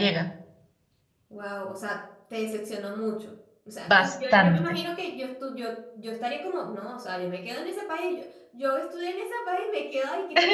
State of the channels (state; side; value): identical; both; correlation 1.00